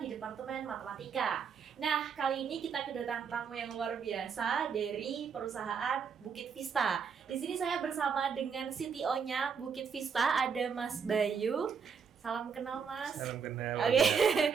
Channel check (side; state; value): left; quieter; 6.3 dB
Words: di Departemen Matematika. Nah, kali ini kita kedatangan tamu yang luar biasa dari perusahaan Bukit Vista. Di sini saya bersama dengan CTO-nya Bukit Vista, ada Mas Bayu. Salam kenal, Mas. Salam kenal. Oke,